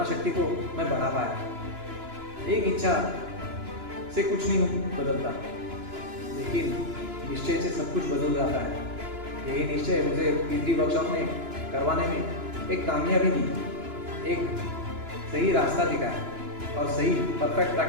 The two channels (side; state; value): left; late; 2.9 ms